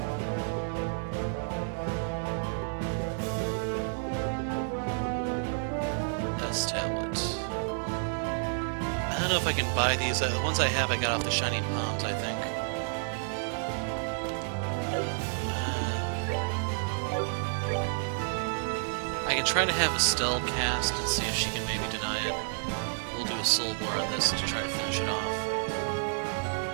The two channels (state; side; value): silent; left; 58 dB below the other